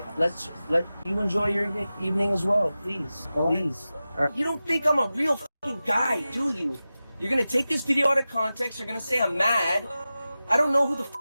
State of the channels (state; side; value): inverted; both; correlation -0.95